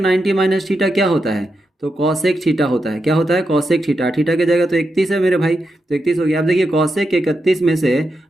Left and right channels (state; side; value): normal; both; correlation 0.86